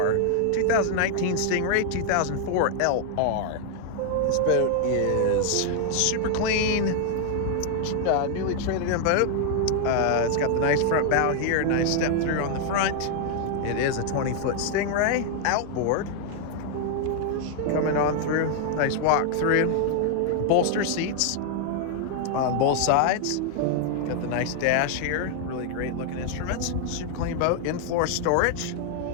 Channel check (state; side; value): different; both; correlation 0.00